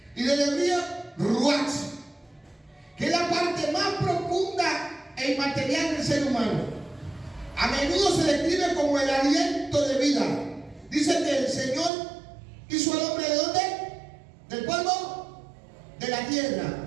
y del hebreo ruach, que es la parte más profunda e inmaterial del ser humano. A menudo se describe como el aliento de vida. Dice que el Señor hizo al hombre ¿de dónde? Del polvo de la tierra.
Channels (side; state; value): left; drops out; at 11.9 s